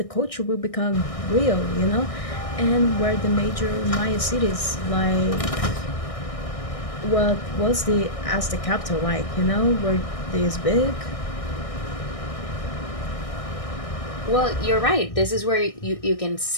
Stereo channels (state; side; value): late; right; 1.6 ms